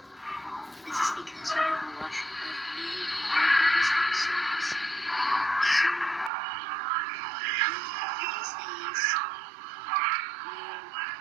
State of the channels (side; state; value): left; drops out; at 6.3 s